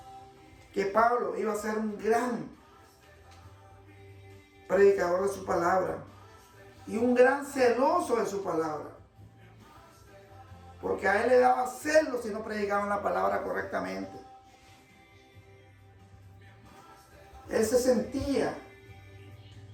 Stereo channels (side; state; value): both; identical; correlation 1.00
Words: que Pablo iba a ser un gran predicador de su palabra y un gran celoso de su palabra. Porque a él le daba celo si no predicaban la palabra correctamente. Él se sentía